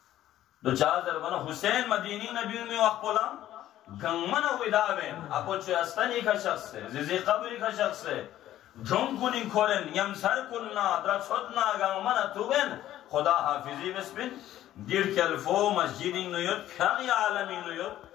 دو چار ضربنا حسین مدینی نہ بیوں میں وقت پولا گنگمن ویدابین اپو چو استنی کا شخص ہے زیزی قبری کا شخص ہے دھن کنی کھولن یم سر کننا در چھتنا گنگمن توبین خدا حافظی بسبین دیر کلفو مسجدی نیوت پھاقی عالمی نیوت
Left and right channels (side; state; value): right; quieter; 13.0 dB